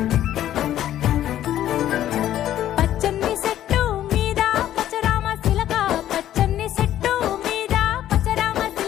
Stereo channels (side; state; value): right; quieter; 12.2 dB